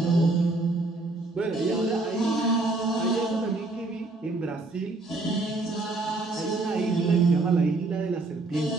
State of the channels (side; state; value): left; quieter; 3.1 dB